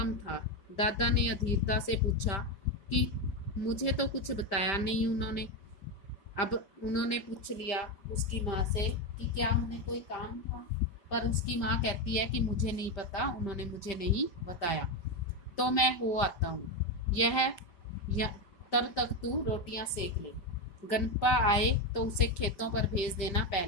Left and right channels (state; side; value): late; right; 5.1 ms